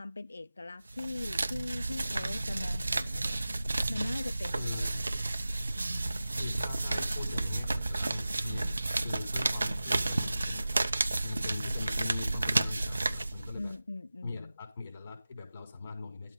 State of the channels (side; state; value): both; inverted; correlation -0.96